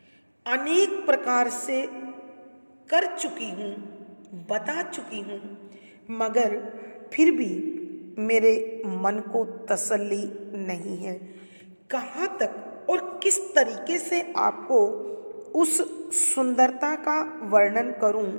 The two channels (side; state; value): both; inverted; correlation -1.00